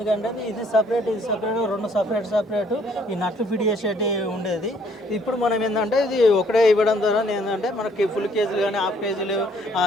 కంటే ఇది సపరేట్ 2 సపరేట్ ఈ నట్లు ఫిట్ చేసేటి ఉండేది. ఇప్పుడు మనం ఏంటంటే ఇది ఒకటే ఇవ్వడం ద్వారా ఏంటంటే మనకి ఫుల్ కేజీలు కానీ హాఫ్ కేజీలు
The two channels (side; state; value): both; normal; correlation 0.63